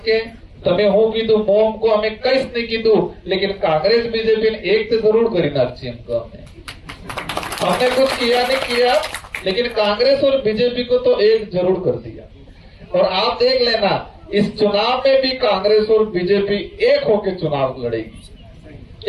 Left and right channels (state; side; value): identical; both; correlation 1.00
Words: के तमें હું કીધું મોમ को हमें કઈશ नहीं कीधु, लेकिन कांग्रेस बीजेपी ने एक तो जरूर करी नाखी हमको। हमने कुछ किया नहीं किया, लेकिन कांग्रेस और बीजेपी को तो एक जरूर कर दिया। और आप देख लेना इस चुनाव में भी कांग्रेस और बीजेपी एक होकर चुनाव लड़ेगी।